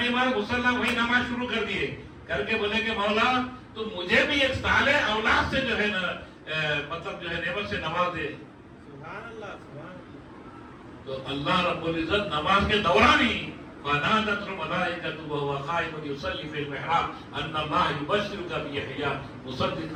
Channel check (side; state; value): both; identical; correlation 1.00